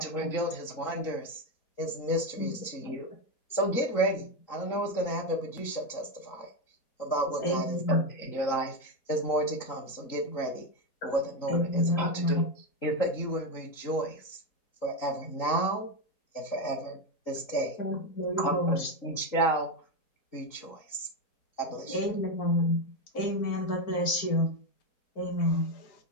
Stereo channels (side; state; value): right; late; 3.9 ms